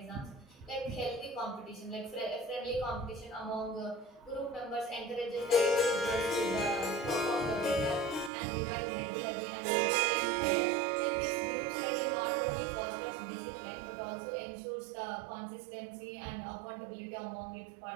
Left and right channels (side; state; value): left; drops out; at 8.3 s